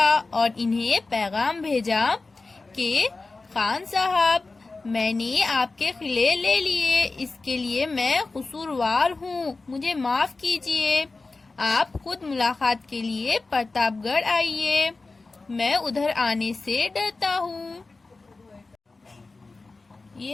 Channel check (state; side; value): quieter; right; 3.6 dB